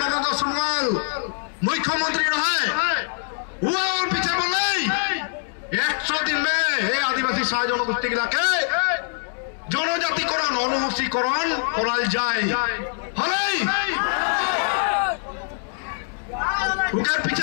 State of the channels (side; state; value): right; silent; digital silence